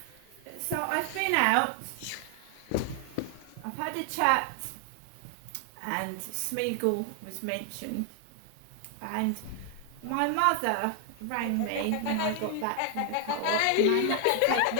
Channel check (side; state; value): both; different; correlation 0.00